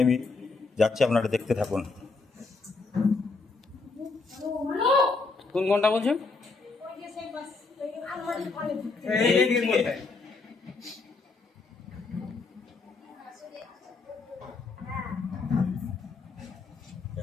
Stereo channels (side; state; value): right; quieter; 4.1 dB